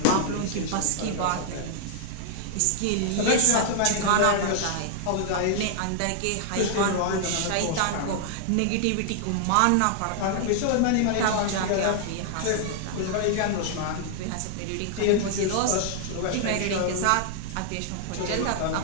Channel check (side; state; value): both; different; correlation -0.01